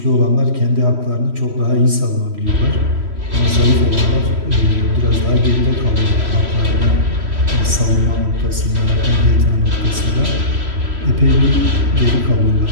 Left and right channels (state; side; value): late; left; 3.1 ms